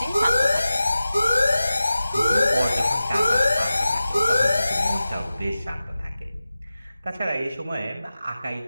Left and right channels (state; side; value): inverted; both; correlation -0.95